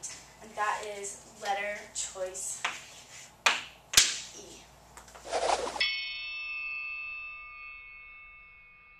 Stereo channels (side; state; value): both; identical; correlation 1.00